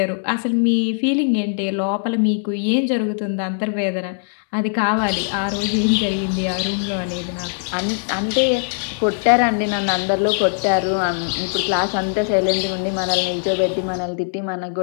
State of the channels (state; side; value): silent; right; digital silence